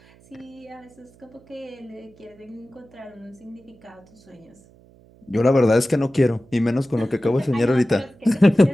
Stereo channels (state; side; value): noise; right; hum, 27 dB below the sound